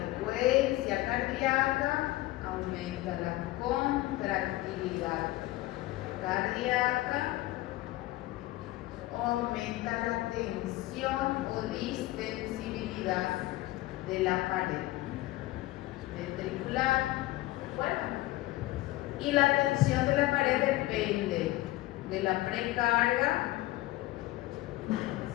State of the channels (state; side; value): quieter; right; 17.8 dB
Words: cardíaca, aumenta la contractilidad cardíaca, aumenta la tensión o distensibilidad de la pared ventricular. ¿Recuerdan? Y la tensión de la pared depende de la precarga